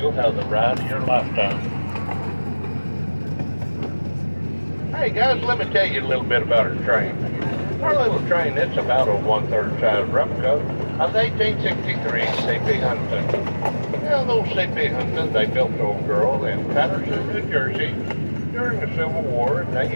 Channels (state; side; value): inverted; both; correlation -1.00